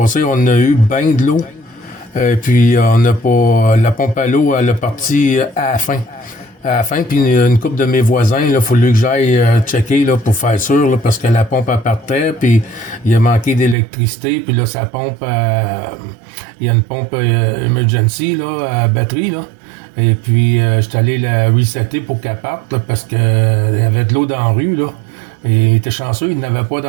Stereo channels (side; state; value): left; drops out; at 13.8 s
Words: on a eu bien de l'eau. Et puis on n'a pas... La pompe à l'eau, elle est partie à la fin. À la fin, puis une couple de mes voisins, il a fallu que j'aille checker là, pour faire sûr, là, parce que la pompe elle partait, puis il a manqué d'électricité, puis là, sa pompe, il y a une pompe emergency là, à batterie, là. Et puis, j'étais allé la resetter pour qu'elle parte, là, parce que il y avait de l'eau dans la rue, là. Et il était chanceux, il n'avait pas